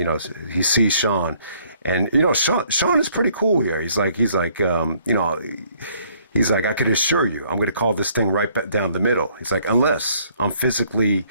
He sees Shawn. And, Shawn is pretty cool here. He's like, I could assure you, I'm going to call this thing right back down the middle. He's like, unless I'm physically,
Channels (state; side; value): inverted; both; correlation -0.63